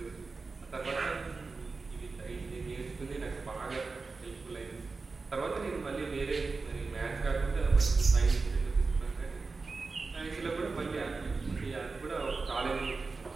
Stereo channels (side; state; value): left; quieter; 4.1 dB